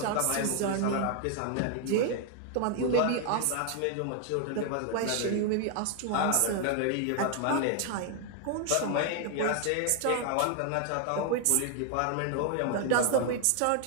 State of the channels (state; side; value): different; both; correlation 0.00